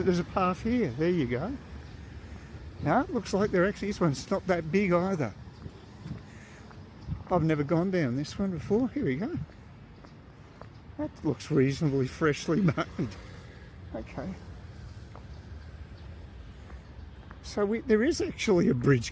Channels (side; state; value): both; identical; correlation 1.00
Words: a path here. There you go. No, it looks like this one's not that big either. I've never gone down this one before. Here we go. That looks reasonably freshly made. Okay. So there is actually a